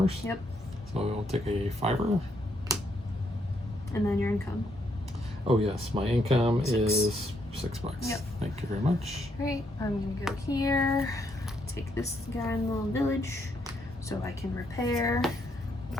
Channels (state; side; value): normal; both; correlation 0.74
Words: Yep. So I'll take a 5er. And then your income. Oh yes, my income 6. is $6. Yep. Thank you very much. Great. I'm gonna go here. Take this guy in the little village, so I can repair